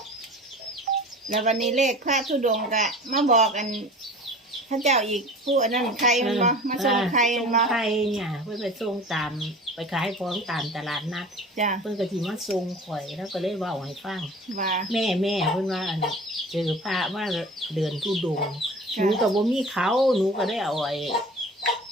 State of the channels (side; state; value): both; normal; correlation 0.40